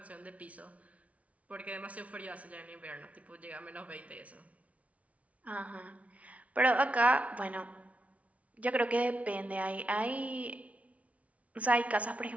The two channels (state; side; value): late; left; 0.066 ms